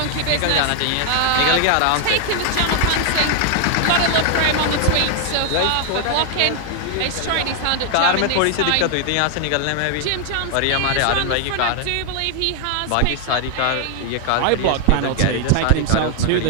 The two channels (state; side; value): different; both; correlation 0.00